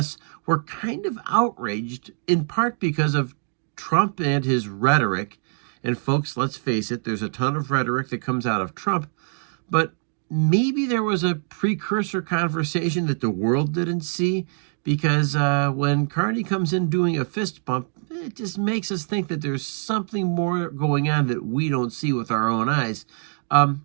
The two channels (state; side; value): silent; left; 56 dB below the other